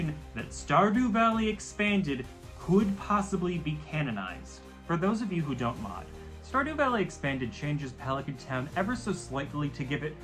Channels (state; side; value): identical; both; correlation 1.00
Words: that Stardew Valley Expanded could possibly be canonized. For those of you who don't mod, Stardew Valley Expanded changes Pelican Town ever so slightly to give it